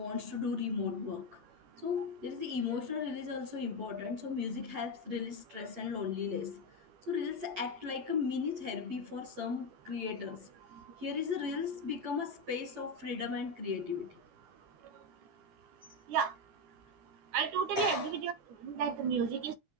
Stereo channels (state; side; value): late; left; 9.7 ms